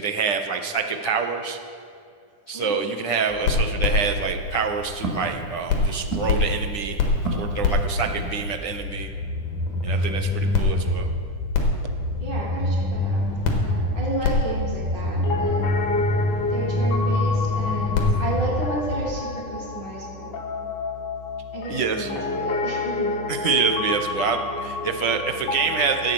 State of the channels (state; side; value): late; right; 10 ms